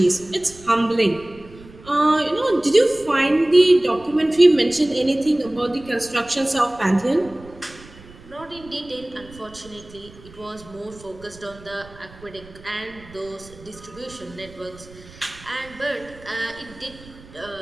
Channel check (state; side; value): noise; right; rumble, 21 dB below the sound